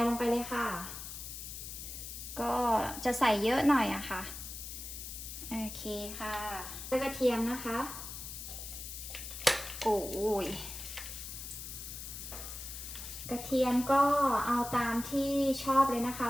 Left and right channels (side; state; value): left; noise; hiss, 9 dB below the sound